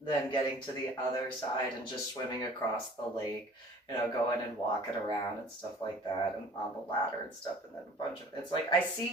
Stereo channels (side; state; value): both; normal; correlation 0.49